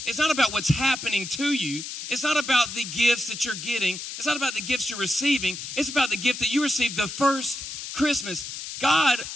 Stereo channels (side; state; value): left; noise; hiss, 8 dB below the sound